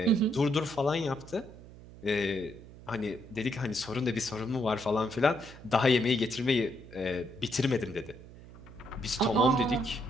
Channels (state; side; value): noise; right; hum, 18 dB below the sound